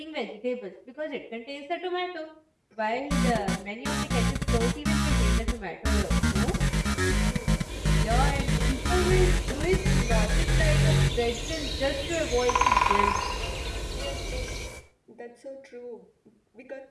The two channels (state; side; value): identical; both; correlation 1.00